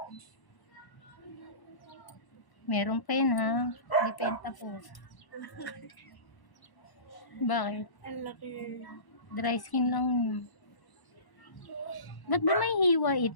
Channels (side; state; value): right; late; 1.0 ms